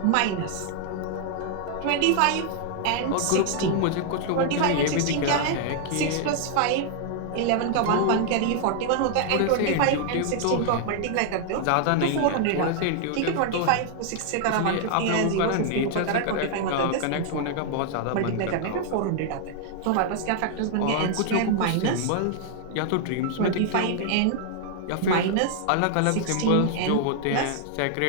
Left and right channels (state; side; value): different; both; correlation 0.00